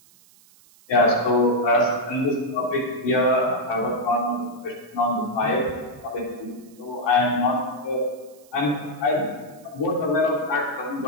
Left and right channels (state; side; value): noise; right; hiss, 28 dB below the sound